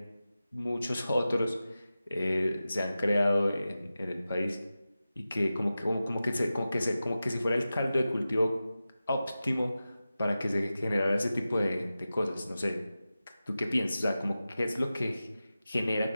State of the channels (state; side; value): inverted; both; correlation -0.94